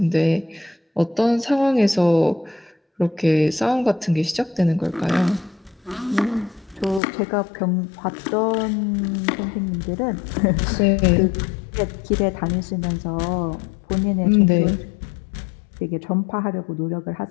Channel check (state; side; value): drops out; right; at 7.0 s